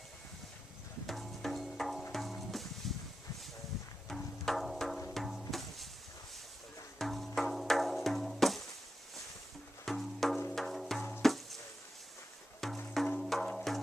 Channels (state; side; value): normal; both; correlation 0.89